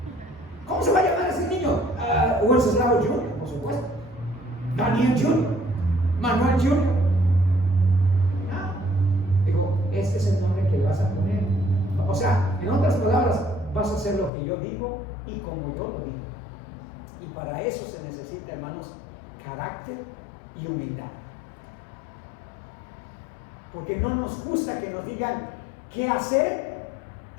¿Cómo se va a llamar ese niño? Wenceslao Junior, por supuesto. Daniel Junior. Manuel Junior. No. Digo, este es el nombre que le vas a poner. O sea, en otras palabras, vas a hacer lo que yo digo y como yo lo digo. Y para eso se necesita, hermanos, carácter y humildad. Porque no nos gusta que nos digan qué hacer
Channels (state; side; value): drops out; right; at 14.3 s